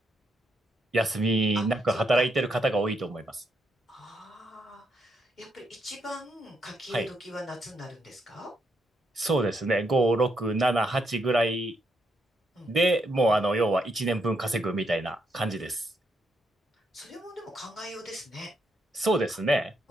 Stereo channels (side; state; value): both; normal; correlation 0.78